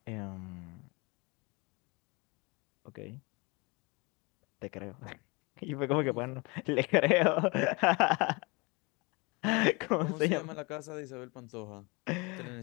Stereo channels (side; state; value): right; quieter; 27.6 dB